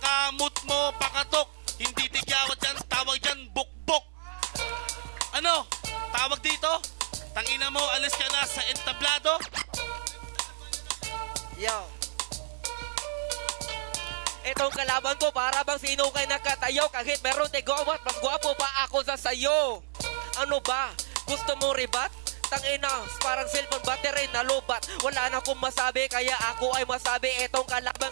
mo, pakatok. Hindi tigyawat yan, tawag dyan, bukbok. Ano? Tawag dito? Tangina mo, alis ka na sa entablado? Yo. Itong kalaban ko para bang sino kay nakatayo. Kahit meron tigawat, mas gwapo pa ako sa sayo. Ano ba? Gusto mo ribat? Tangina, parang cellphone battery na lubat. Wala na akong masabi, kaya ako ay masabi. Itong kalaban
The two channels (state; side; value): silent; left; 58 dB below the other